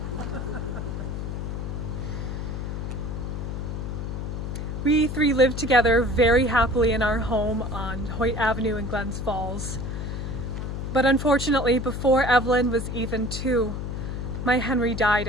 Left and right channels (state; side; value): noise; left; hum, 4 dB below the sound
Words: We three lived together very happily in our home on Hoyt Avenue in Glens Falls. But unfortunately, before Evelyn was even 2, my Henry died